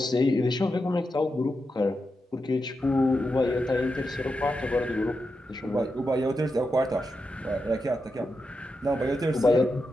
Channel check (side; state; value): both; normal; correlation 0.87